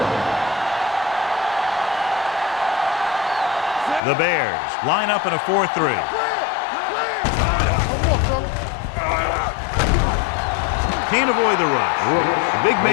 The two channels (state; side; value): drops out; right; at 4.0 s